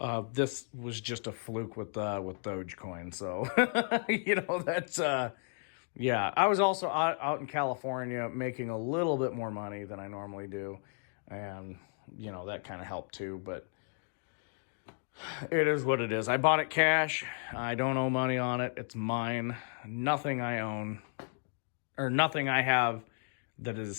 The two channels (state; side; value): silent; right; 55 dB below the other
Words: this was just a fluke with Dogecoin. So, that's, yeah. I was also out in California making a little bit more money than I normally do. And, that kind of helped too, but it is what it is. I bought it cash. I don't owe money on it. It's mine. Nothing I own, or nothing I have that